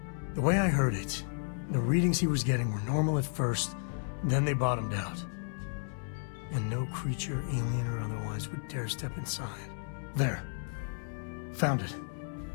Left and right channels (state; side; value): silent; right; 56 dB below the other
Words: The way I heard it, the readings he was getting were normal at first, then they bottomed out. And no creature, alien or otherwise, would dare step inside. There. Found it.